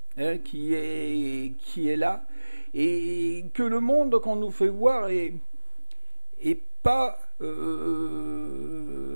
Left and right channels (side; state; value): both; inverted; correlation -1.00